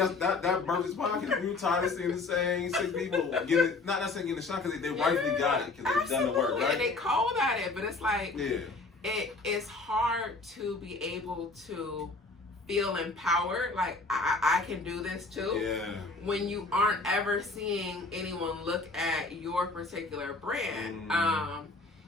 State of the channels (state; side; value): quieter; right; 3.5 dB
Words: that birth is podcast. We were tired of seeing the same 6 people getting, not necessarily getting a shot because they rightfully got it because they've done the work, right? And they called at it, but it's like yeah, it's hard to be able to feel empowered. Like I can do this too. Yeah. When you aren't ever seeing anyone look at your particular brand,